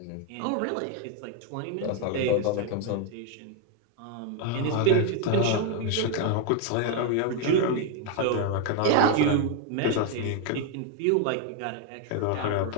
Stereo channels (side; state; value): both; different; correlation 0.01